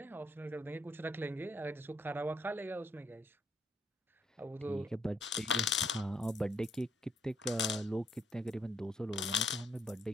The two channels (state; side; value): normal; both; correlation 0.71